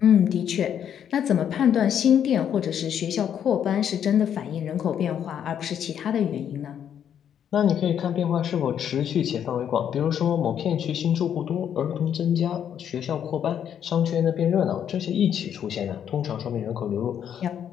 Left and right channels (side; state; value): right; quieter; 9.1 dB